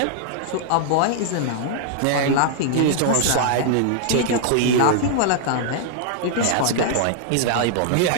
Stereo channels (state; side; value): different; both; correlation -0.01